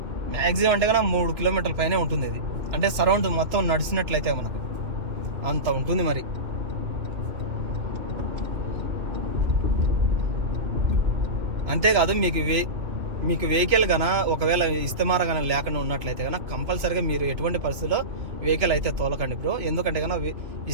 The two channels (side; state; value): left; late; 2.7 ms